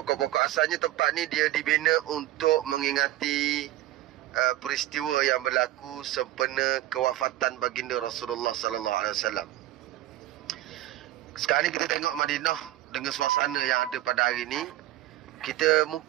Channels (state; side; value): quieter; left; 15.0 dB